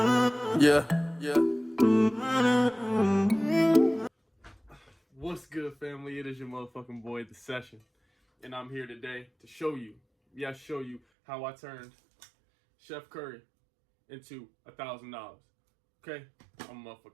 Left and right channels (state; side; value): drops out; left; at 11.0 s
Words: Yeah. What's good, family? It is your motherfucking boy, The Session. And I'm here today to show you how I turned Chef Curry into $1,000. Okay? I'm a